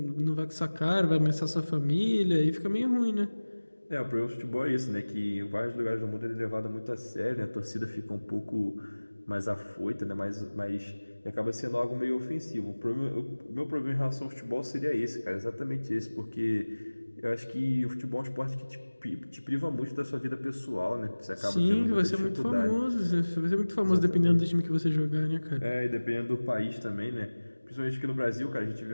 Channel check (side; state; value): both; inverted; correlation -1.00